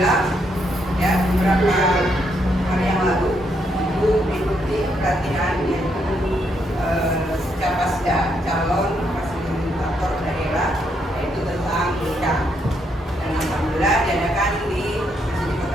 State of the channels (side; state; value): both; normal; correlation 0.76